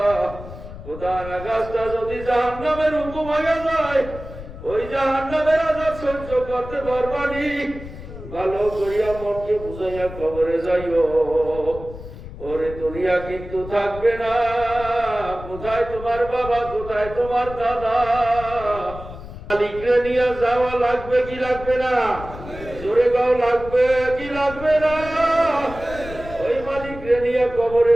খোদার আকাশটা যদি জাহান্নামের হুকুম হয়ে যায়, ওই জাহান্নামের আযাব সহ্য করতে পারবানি। ভালো করিয়া মনকে বুঝাইয়া কবরে যাইও। ওরে দুনিয়া কিন্তু থাকবে না। কোথায় তোমার বাবা, কোথায় তোমার দাদা? মালিকরে নিয়ে যাওয়া লাগবে কি লাগবে না? জোরে গাও, লাগবে কি লাগবে না? ওই মালিকরে নিয়ে কবরে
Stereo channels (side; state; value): left; noise; rumble, 13 dB below the sound